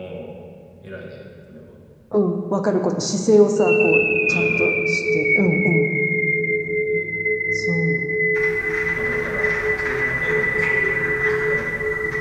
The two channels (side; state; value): both; identical; correlation 1.00